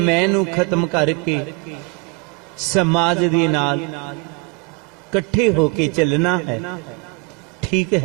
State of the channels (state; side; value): quieter; left; 27.8 dB